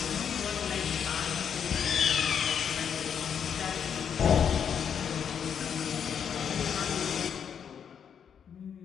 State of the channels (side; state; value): right; quieter; 7.8 dB